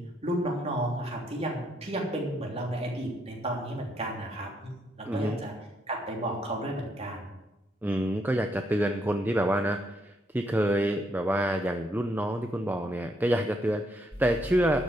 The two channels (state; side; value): normal; both; correlation 0.74